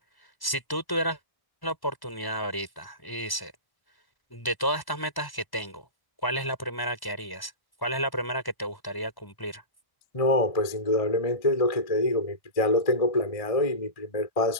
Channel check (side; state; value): right; late; 1.1 ms